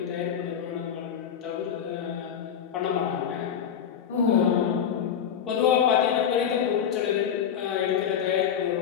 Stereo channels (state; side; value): quieter; right; 8.5 dB